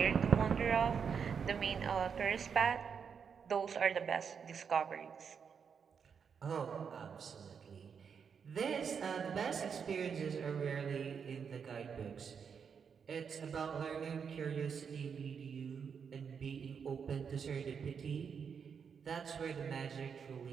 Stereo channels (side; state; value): left; quieter; 6.6 dB